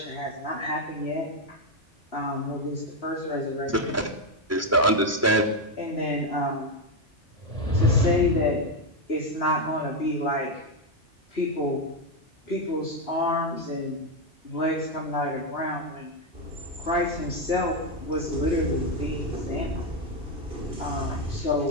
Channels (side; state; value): both; normal; correlation 0.05